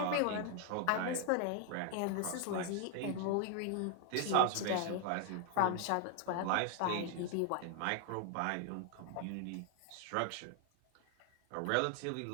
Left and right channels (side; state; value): both; different; correlation 0.00